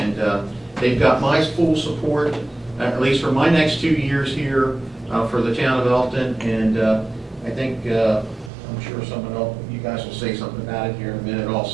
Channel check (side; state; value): left; drops out; at 8.5 s